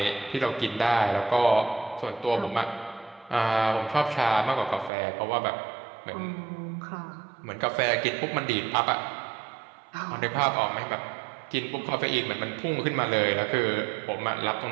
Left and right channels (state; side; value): drops out; left; at 4.9 s